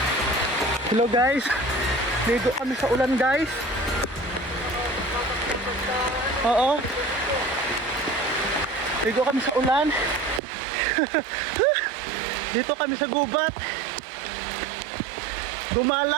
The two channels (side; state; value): left; drops out; at 10.4 s